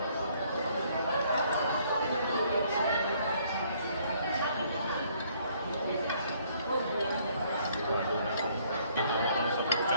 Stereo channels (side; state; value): both; inverted; correlation -0.64